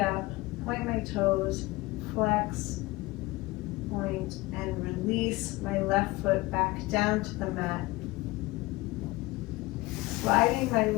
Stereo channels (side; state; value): right; quieter; 21.2 dB